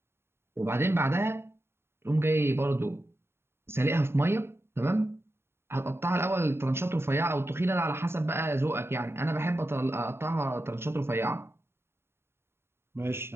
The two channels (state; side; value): late; left; 0.12 ms